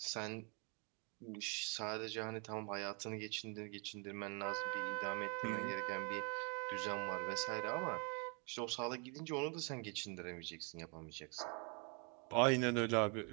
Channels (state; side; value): quieter; left; 36.0 dB